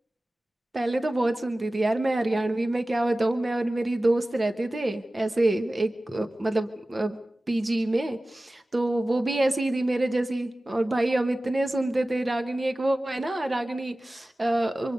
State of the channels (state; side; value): normal; both; correlation 0.97